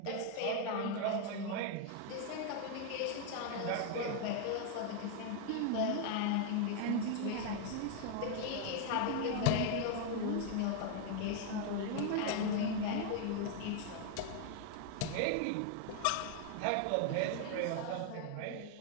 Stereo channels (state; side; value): different; both; correlation 0.00